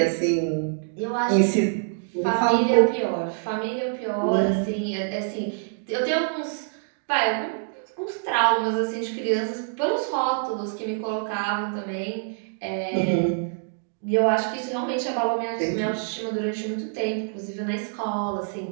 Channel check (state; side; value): silent; left; digital silence